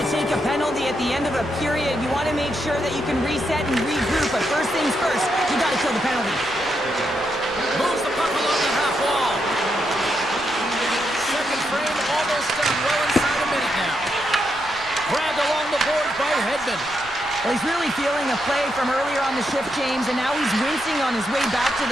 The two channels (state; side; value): noise; left; rumble, 20 dB below the sound